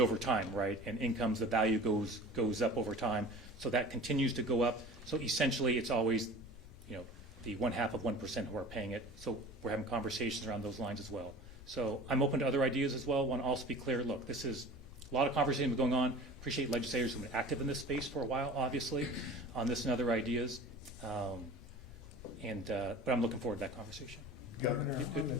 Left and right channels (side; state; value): both; normal; correlation 0.40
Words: time, right? And incomes, the value goes up over time. So that continues to go up. So essentially, it's always, the 0.5% who are paying it. So we're having conversations around those lines as well. So I'm open to other ideas as well. Want to also be clear, look, this is a lot of conversation going on. Appreciate legislators who've been active in this space for a while, obviously, on this and other ideas. But I'm looking forward to that conversation. Governor,